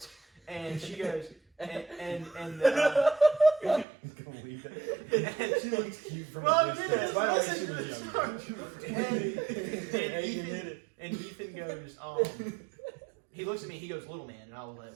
and she goes, and Believe it. She looks cute from Well, a distance. yeah, By the way, listen she to was this younger. and Ethan goes, he looks at me, he goes, little man, and I was like,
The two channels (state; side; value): drops out; left; at 3.9 s